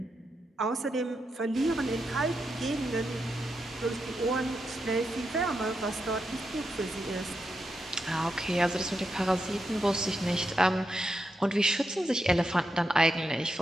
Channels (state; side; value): normal; both; correlation 0.85